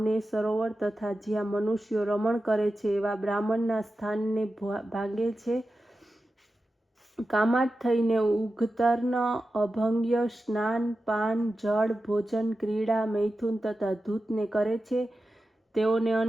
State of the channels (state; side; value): normal; both; correlation 0.92